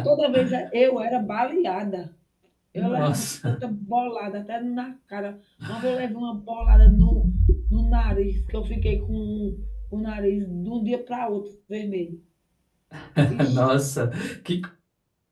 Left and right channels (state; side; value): identical; both; correlation 1.00